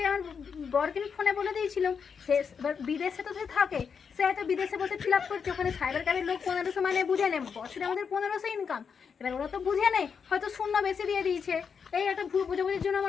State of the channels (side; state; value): right; quieter; 6.3 dB